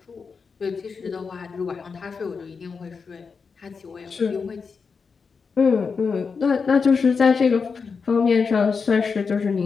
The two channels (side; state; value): right; quieter; 5.3 dB